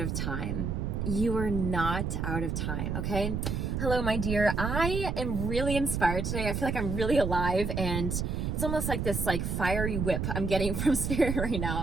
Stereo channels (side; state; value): right; noise; rumble, 1 dB below the sound